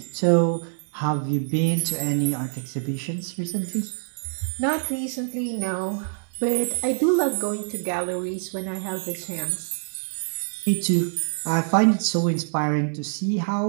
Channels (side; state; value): left; silent; digital silence